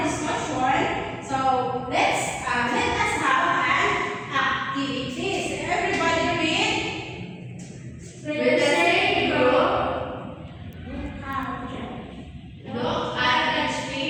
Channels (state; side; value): identical; both; correlation 1.00